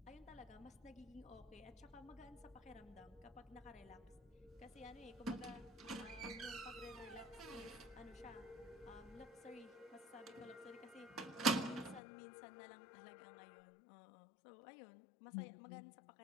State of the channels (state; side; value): drops out; right; at 12.0 s